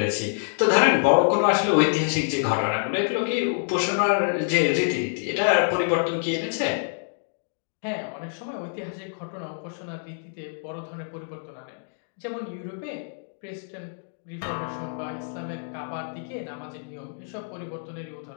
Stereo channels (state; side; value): silent; right; digital silence